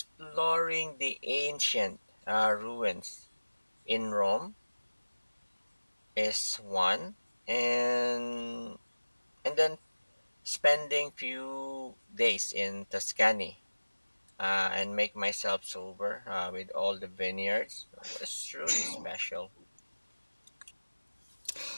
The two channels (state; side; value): inverted; both; correlation -1.00